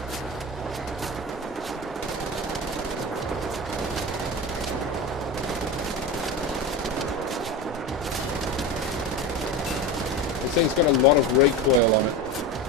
This thing's got a lot of recoil on it.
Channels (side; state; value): both; normal; correlation 0.24